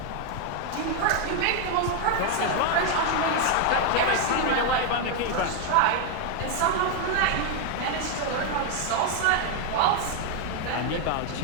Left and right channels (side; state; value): both; different; correlation 0.00